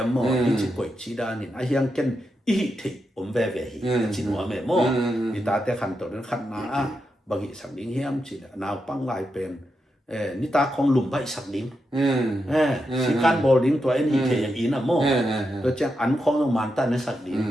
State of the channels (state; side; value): normal; both; correlation 0.86